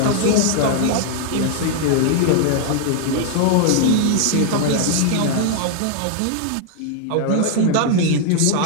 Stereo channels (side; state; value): both; different; correlation 0.00